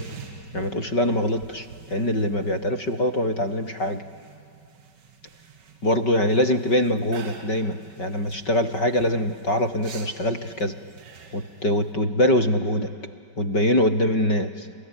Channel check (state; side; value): late; right; 5.3 ms